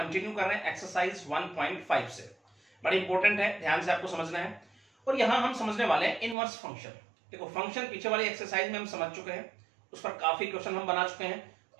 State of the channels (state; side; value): drops out; left; at 6.4 s